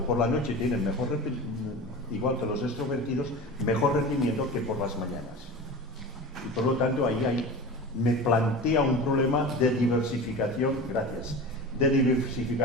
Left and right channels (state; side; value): normal; both; correlation 0.31